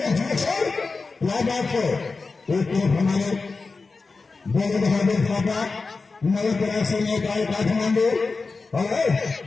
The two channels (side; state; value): right; quieter; 4.1 dB